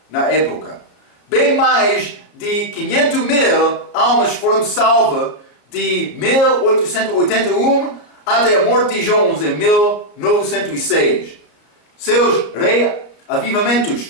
na época. Bem mais de 500.000 almas foram salvas de 1881 até a morte de Jones em 1906. Seus reavivamentos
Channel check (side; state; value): right; late; 34 ms